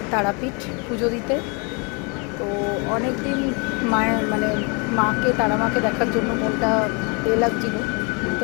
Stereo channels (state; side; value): quieter; right; 33.0 dB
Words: তারাপীঠ পুজো দিতে। তো অনেক দিন মায়ের তারা মাকে দেখার জন্য মনটা লাগছিল। তো